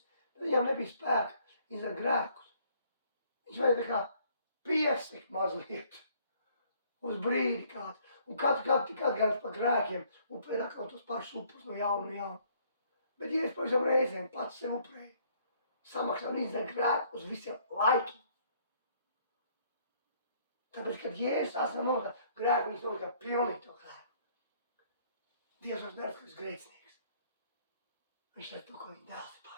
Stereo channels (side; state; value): both; inverted; correlation -0.63